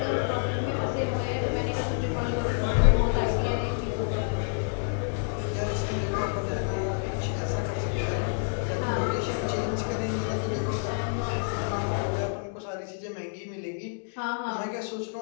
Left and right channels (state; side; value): silent; right; digital silence